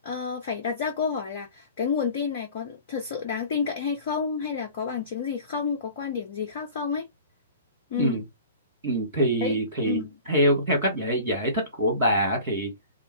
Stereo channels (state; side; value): inverted; both; correlation -0.40